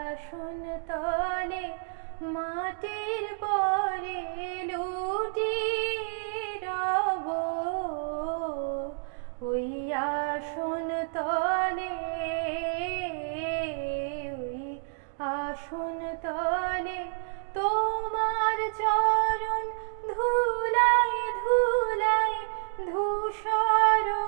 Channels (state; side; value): silent; left; digital silence